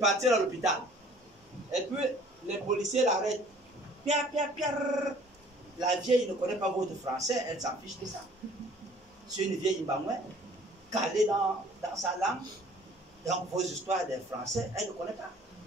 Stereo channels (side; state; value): both; normal; correlation 0.53